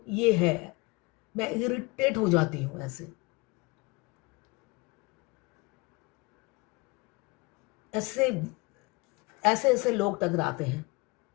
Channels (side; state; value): right; quieter; 25.9 dB